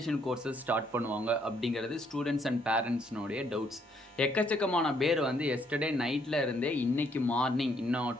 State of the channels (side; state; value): both; normal; correlation 0.69